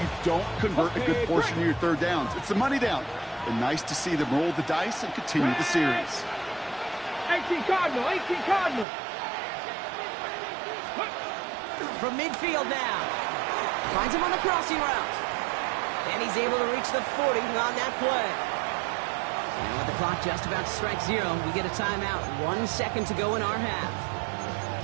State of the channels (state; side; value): drops out; left; at 8.8 s